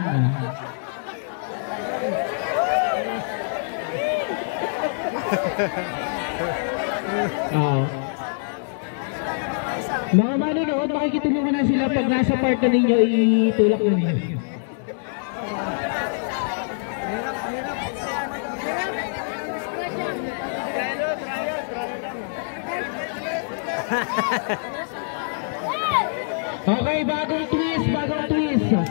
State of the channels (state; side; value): silent; right; digital silence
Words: Mga manonood, makikitulungan na sila pag nasa part na ninyo, itulak na ninyo. Okay, bagong twist.